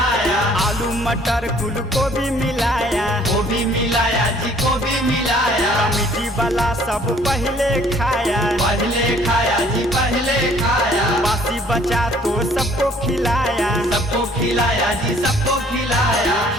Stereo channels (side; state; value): both; normal; correlation 0.58